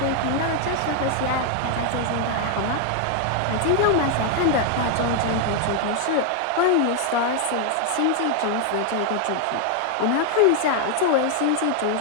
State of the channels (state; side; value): different; both; correlation 0.00